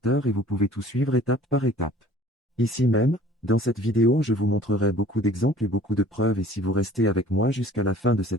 et vous pouvez tout suivre étape par étape. Ici même, dans cette vidéo je vous montrerai beaucoup d'exemples et beaucoup de preuves et si vous restez avec moi jusqu'à la fin de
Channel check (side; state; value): both; normal; correlation 0.51